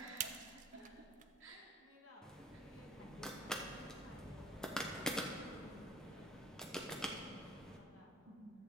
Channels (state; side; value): normal; both; correlation 0.49